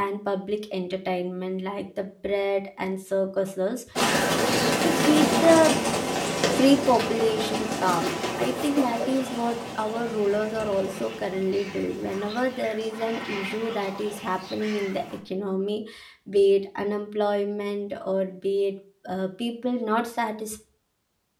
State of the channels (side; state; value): both; identical; correlation 1.00